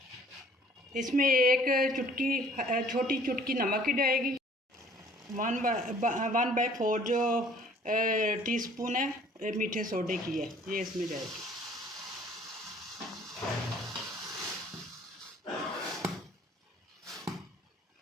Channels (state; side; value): normal; both; correlation 0.55